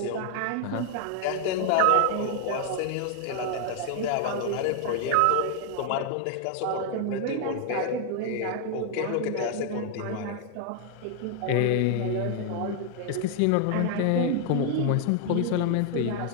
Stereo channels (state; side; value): different; both; correlation 0.00